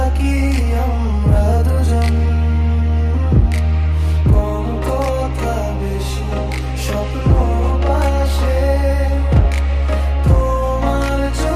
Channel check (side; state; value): both; identical; correlation 1.00